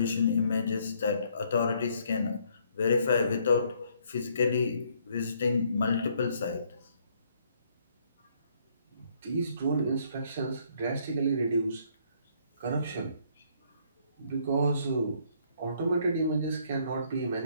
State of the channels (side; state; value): both; inverted; correlation -0.67